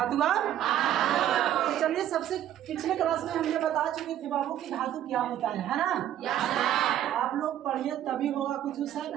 का तो चलिए, सबसे पिछले क्लास में हमने बता चुके थे बाबू कि धातु क्या होता है ना? आप लोग पढ़िए तभी होगा कुछ सर,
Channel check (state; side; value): quieter; left; 11.5 dB